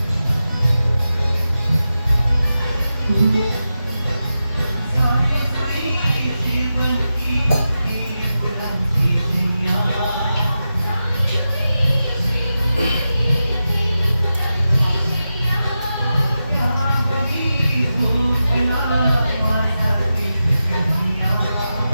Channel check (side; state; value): both; inverted; correlation -0.91